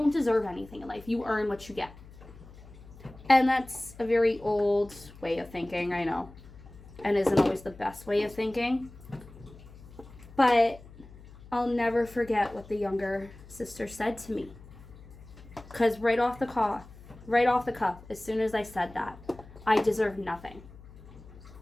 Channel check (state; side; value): noise; left; hum, 19 dB below the sound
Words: deserve anything in life. You earn what you get. And that's a very old way of thinking, I know, and isn't always the best way of thinking. But I'll never forget what the younger sister said to me. Because right off the cuff, as soon as I said that, I deserve nothing.